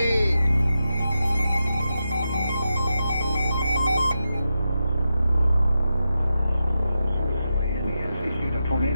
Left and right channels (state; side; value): inverted; both; correlation -0.89